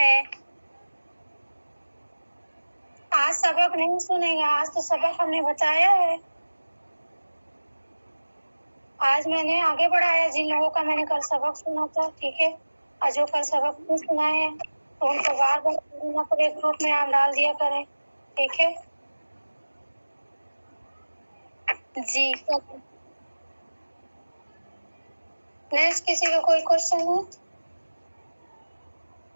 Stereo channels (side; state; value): both; inverted; correlation -1.00